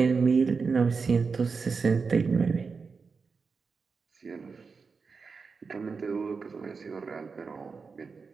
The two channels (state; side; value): quieter; left; 5.0 dB